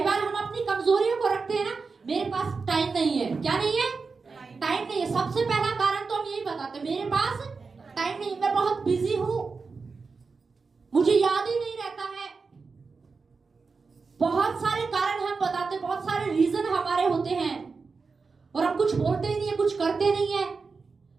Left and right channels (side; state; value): left; quieter; 4.6 dB